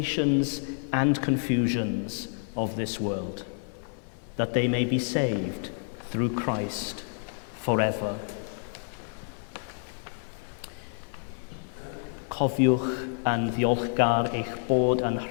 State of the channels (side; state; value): right; silent; 59 dB below the other